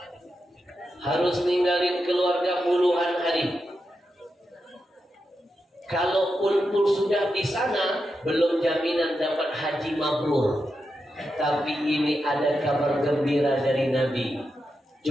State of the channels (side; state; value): both; normal; correlation 0.87